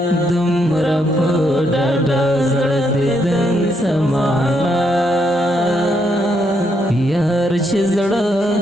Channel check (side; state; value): both; normal; correlation 0.76